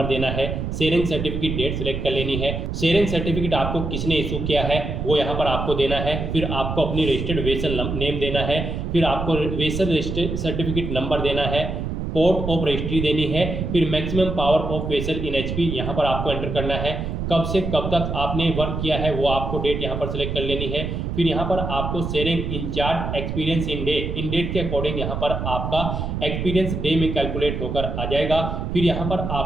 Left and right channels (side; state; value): right; noise; rumble, 3 dB below the sound